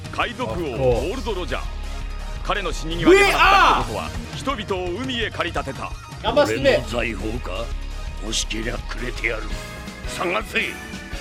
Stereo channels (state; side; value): identical; both; correlation 1.00